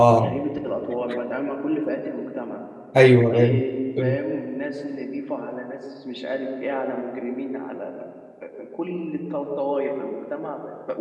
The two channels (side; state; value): both; identical; correlation 1.00